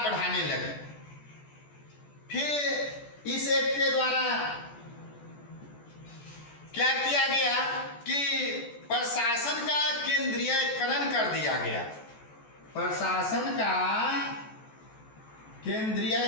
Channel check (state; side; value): late; right; 14 ms